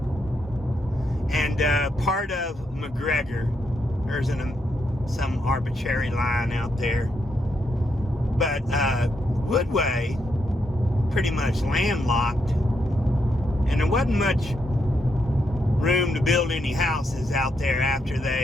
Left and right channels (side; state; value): both; normal; correlation 0.80